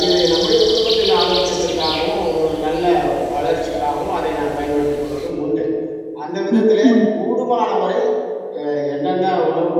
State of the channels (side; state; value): both; identical; correlation 1.00